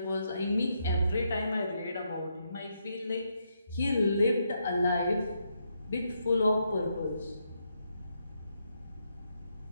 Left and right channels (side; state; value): both; inverted; correlation -0.80